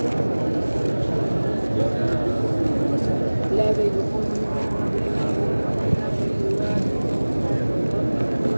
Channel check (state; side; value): inverted; both; correlation -1.00